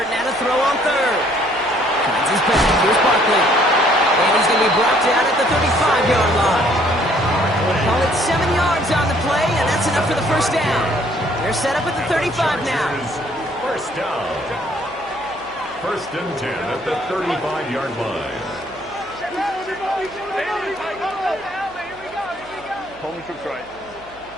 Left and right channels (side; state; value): right; noise; hum, 24 dB below the sound